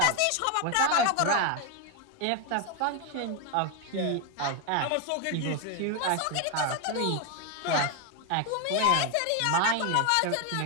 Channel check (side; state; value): both; different; correlation 0.01